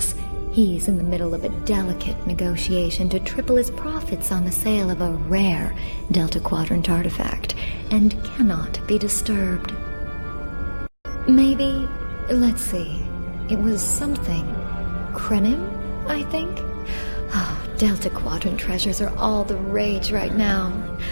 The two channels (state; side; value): inverted; both; correlation -1.00